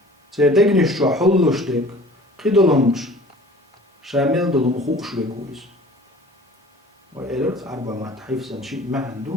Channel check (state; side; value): normal; both; correlation 0.46